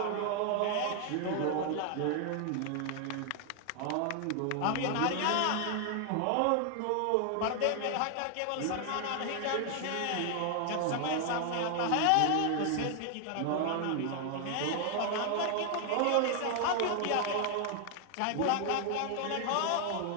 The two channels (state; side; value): different; both; correlation 0.00